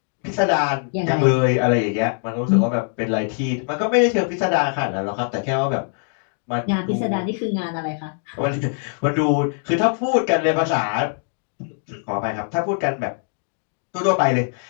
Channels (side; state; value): right; silent; 55 dB below the other